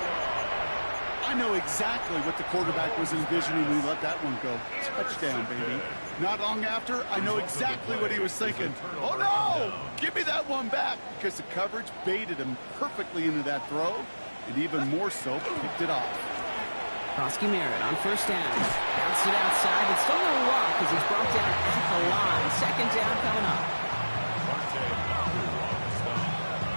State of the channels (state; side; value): inverted; both; correlation -1.00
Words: I know exactly what the quarterback was envisioning when he let that one go. Touchdown, baby. Not long after, I know exactly what he was thinking. Oh, no! Give me that one back, because the coverage baited him perfectly into that throw, and even more so, picked it off. Krosky Merritt on first down. Bounced it outside, but still no luck as he's brought down at the line. Second down coming up.